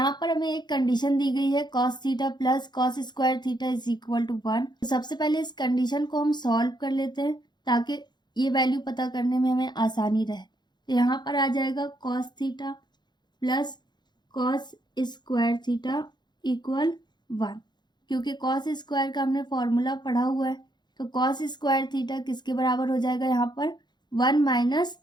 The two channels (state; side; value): late; right; 0.21 ms